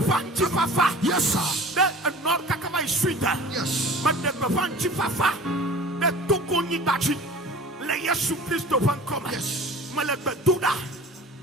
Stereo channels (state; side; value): normal; both; correlation 0.41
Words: Tifafa. Yes, sir. The North Kakama is sweeter. Yes. But the Bafan Tifafa. The Togo Nibachi. Leia Suplisto Pancoma. Yes. Malabatuda.